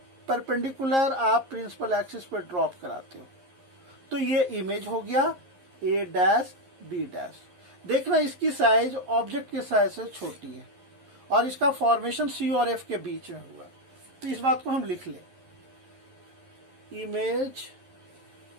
परपेंडिकुलर आप प्रिंसिपल एक्सिस पे ड्रॉप कराते हो। तो ये इमेज हो गया ए डैश बी डैश। देखना इसकी साइज ऑब्जेक्ट के साइज से छोटी है और इसका फॉर्मेशन सी और एफ के बीच में हुआ। तो इस बात को हम लिख लें, image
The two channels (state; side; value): late; left; 11 ms